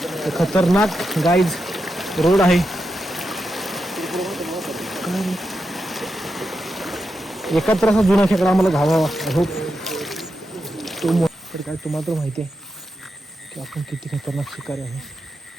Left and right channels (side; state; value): both; normal; correlation 0.87